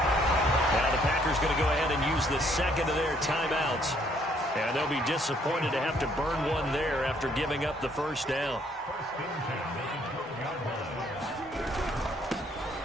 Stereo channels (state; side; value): normal; both; correlation 0.66